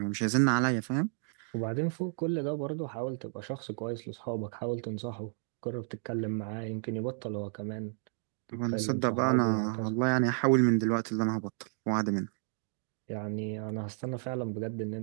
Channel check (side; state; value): left; silent; digital silence